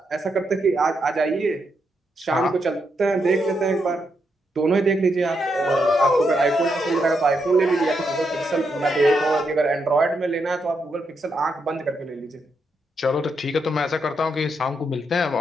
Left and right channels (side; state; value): both; normal; correlation 0.81